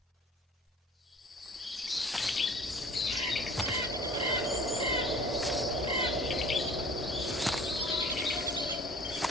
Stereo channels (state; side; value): normal; both; correlation 0.47